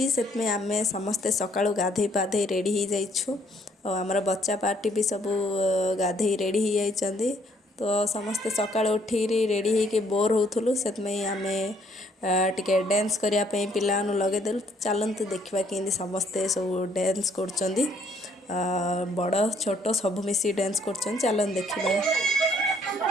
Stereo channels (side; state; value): both; normal; correlation 0.65